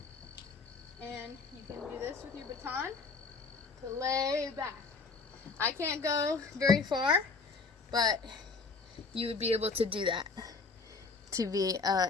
and you can do this with your baton to lay back. I can't go very far, but you would be able to do that to be an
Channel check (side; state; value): right; quieter; 4.4 dB